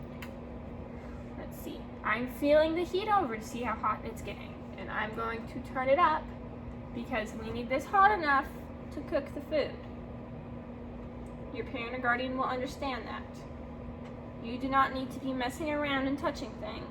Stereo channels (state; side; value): identical; both; correlation 1.00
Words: Let's see. I'm feeling the heat over to see how hot it's getting. And I'm going to turn it up because we need this hot enough to cook the food. Your parent or guardian will understand that. You do not need to be messing around and touching